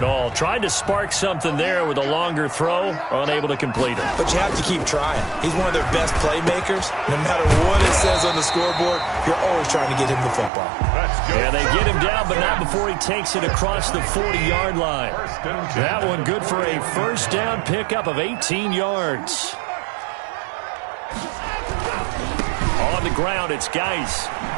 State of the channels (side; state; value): left; drops out; at 10.5 s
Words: all. Tried to spark something there with a longer throw, unable to complete it. But you have to keep trying. He's one of their best playmakers. No matter what it says on the scoreboard, you're always trying to get him the football. Yeah, they get him down, but not before he takes it across the 40-yard line. That one good for a 1st down pickup of 18 yards. On the ground, it's Geis.